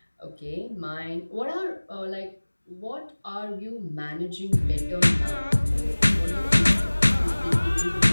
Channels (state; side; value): inverted; both; correlation -1.00